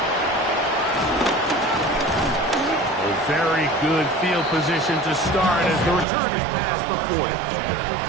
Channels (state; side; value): drops out; left; at 6.1 s